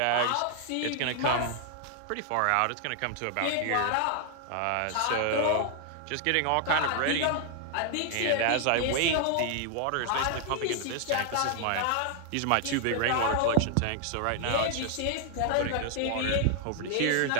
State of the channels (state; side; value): different; both; correlation 0.00